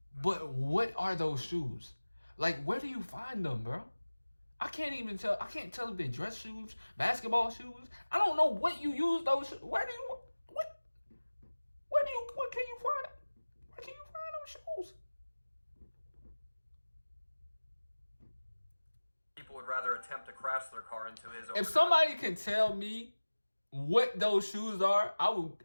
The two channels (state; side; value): inverted; both; correlation -1.00